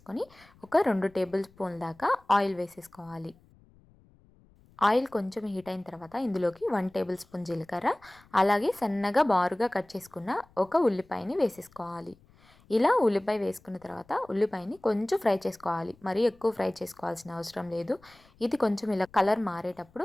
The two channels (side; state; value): left; noise; rumble, 29 dB below the sound